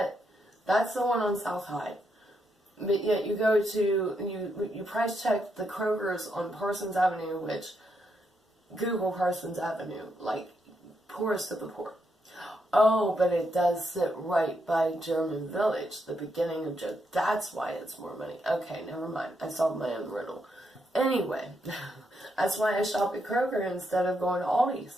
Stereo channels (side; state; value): both; normal; correlation 0.80